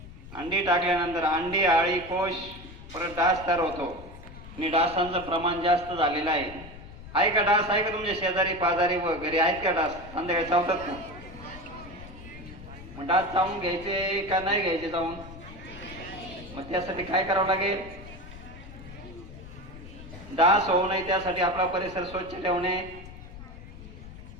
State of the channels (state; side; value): noise; left; rumble, 15 dB below the sound